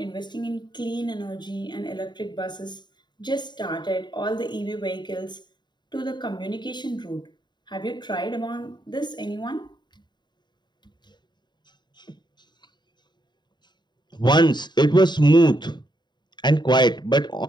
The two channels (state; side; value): late; right; 0.21 ms